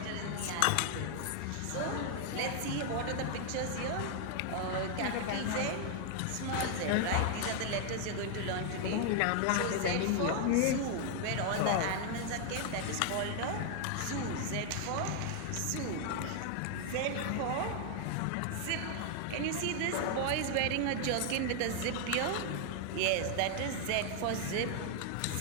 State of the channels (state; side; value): different; both; correlation 0.00